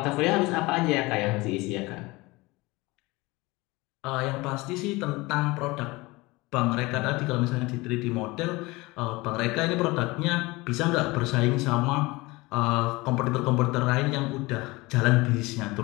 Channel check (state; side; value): quieter; right; 22.4 dB